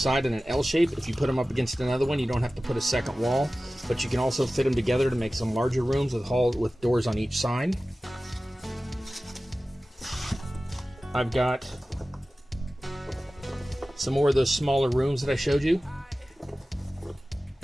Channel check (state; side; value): normal; both; correlation 0.96